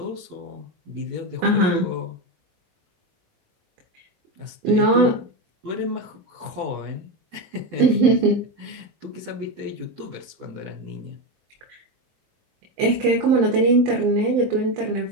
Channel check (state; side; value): late; left; 20 ms